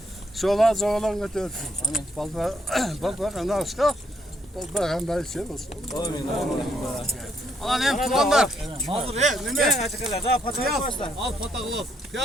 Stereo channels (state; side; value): normal; both; correlation 0.73